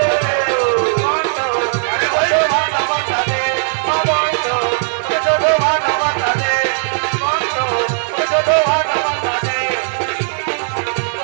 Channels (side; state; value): left; silent; digital silence